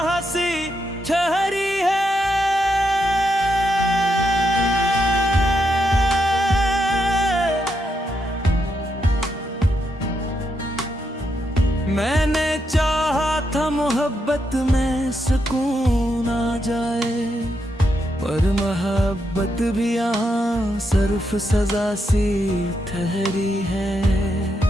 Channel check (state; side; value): normal; both; correlation 0.81